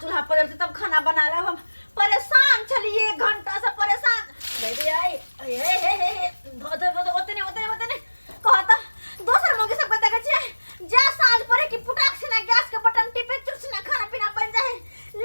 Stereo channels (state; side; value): inverted; both; correlation -1.00